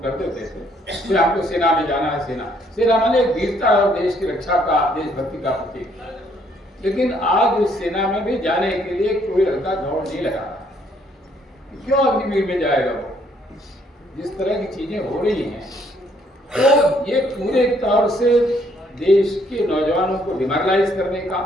कर देते थे, फिर हमको सेना में जाना है। सेना माने एक वीरता और देश की रक्षा का, देशभक्ति का प्रतीक। लेकिन आज उस सेना में भी जाने के लिए कोई लड़का दौड़ नहीं लगा रहा। क्यों अग्निवीर में जाएगा वो? जिस तरह की चीजें हो रही हैं, तो ये पूरे तौर से देश के नौजवानों को डिमोरलाइज करने का,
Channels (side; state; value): both; normal; correlation 0.67